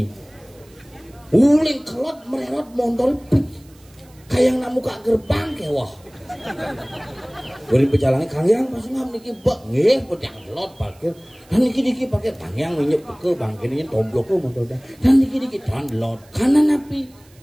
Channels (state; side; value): noise; right; hiss, 29 dB below the sound